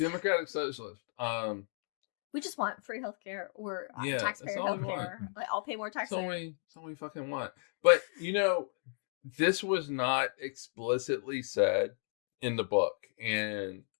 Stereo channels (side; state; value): right; silent; 55 dB below the other